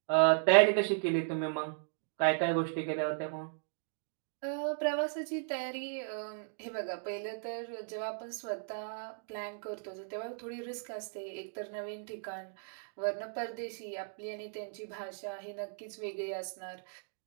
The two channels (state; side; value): silent; left; digital silence